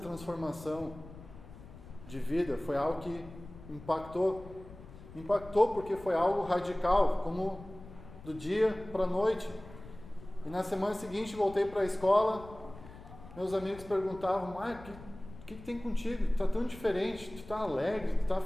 de vida foi algo que impactou porque foi algo radical, como do dia para a noite. E na semana seguinte voltei para a escola, meus amigos perguntavam: Marco, o que tem contigo? Tu está tão diferente, tu está alegre, tu está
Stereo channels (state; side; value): noise; left; rumble, 17 dB below the sound